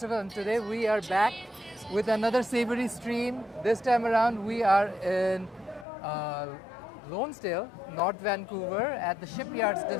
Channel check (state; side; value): drops out; right; at 5.9 s